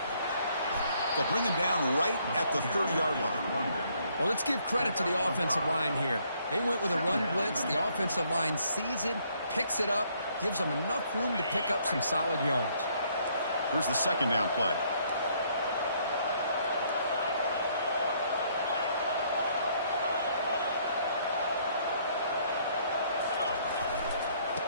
They'll bring him down right at the 30-yard line. Well, let's give credit to the offensive line here. They went with a run blitz. The offensive line sees it, picks it up, gives them enough room to pick up some solid yards. Here's the second down play.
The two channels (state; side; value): inverted; both; correlation -0.67